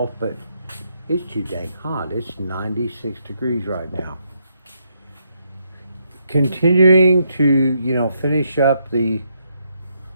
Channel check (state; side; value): inverted; both; correlation -0.77